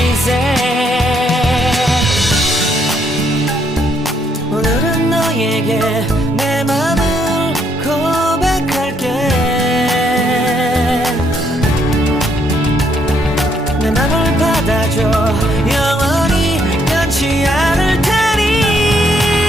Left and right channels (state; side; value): normal; both; correlation 0.72